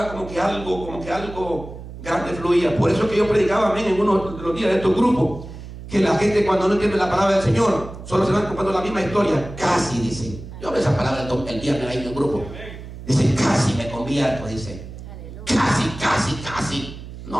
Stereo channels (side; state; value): right; noise; hum, 13 dB below the sound